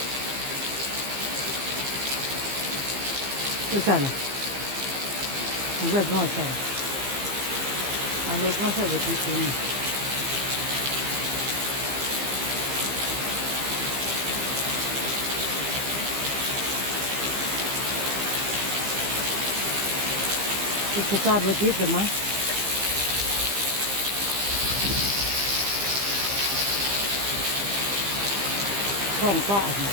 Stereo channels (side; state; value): left; late; 15 ms